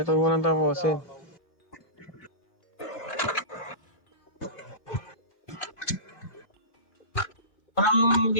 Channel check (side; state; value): right; late; 2.4 ms